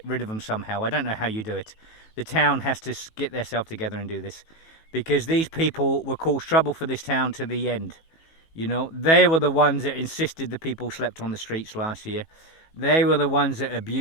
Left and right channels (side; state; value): right; late; 18 ms